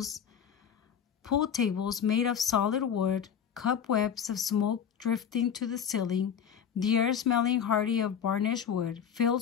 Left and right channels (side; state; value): right; quieter; 8.1 dB